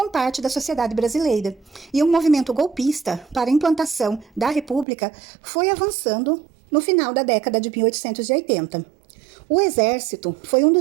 parte da sociedade brasileira, e um movimento golpista para a implantação da República foi avançando no final da década de 1880. O Exército foi um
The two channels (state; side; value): drops out; left; at 4.9 s